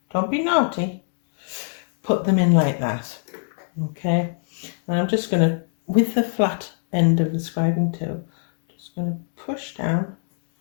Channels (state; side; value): silent; right; digital silence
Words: don't be naughty. Put them in like that, okay? And I'm just going to, with the flat end of the scribing tool, just going to push down